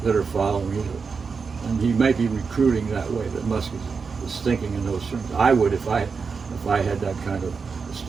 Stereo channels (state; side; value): quieter; left; 5.2 dB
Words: that are following you. And he may be recruiting that way, that Musk is thinking in those terms. I would if I had that kind of